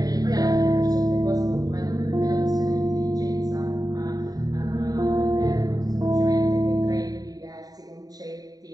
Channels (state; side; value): late; left; 0.18 ms